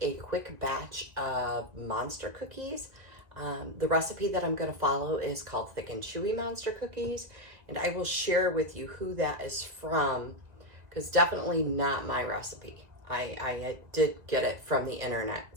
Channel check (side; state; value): left; late; 1.9 ms